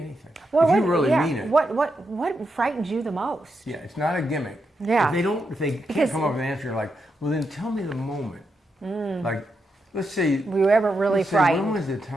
Well, if you really mean it. What frightens you the most? Yeah, it's not a gimmick. Yeah. If they can't come up with an answer, you're like, well, then tell me the moment. Like, let's say. Were you ever really frightened? When was the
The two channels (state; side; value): normal; both; correlation 0.84